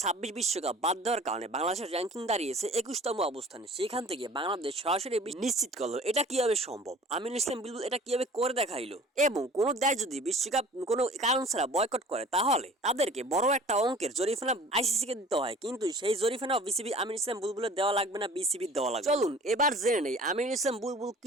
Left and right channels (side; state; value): both; normal; correlation 0.47